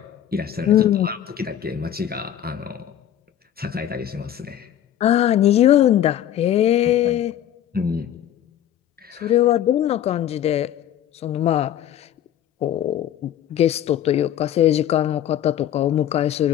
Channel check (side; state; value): right; quieter; 10.9 dB